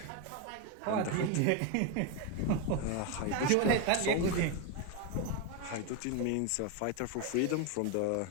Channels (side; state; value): both; different; correlation 0.02